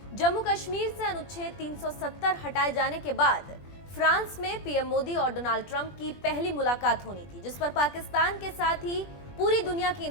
जम्मू कश्मीर से अनुच्छेद 370 हटाए जाने के बाद फ्रांस में पीएम मोदी और डोनाल्ड ट्रंप की पहली मुलाकात होनी थी, जिस पर पाकिस्तान के साथ ही पूरी दुनिया की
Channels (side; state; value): right; late; 20 ms